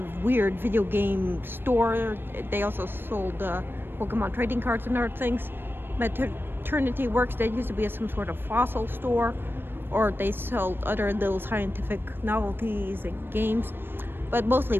weird video game store. They also sold Pokemon trading cards and other things. Maternity Works, that used to be some sort of fossil store, or they sold other little scientific novelties and games, but mostly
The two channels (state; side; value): late; left; 0.099 ms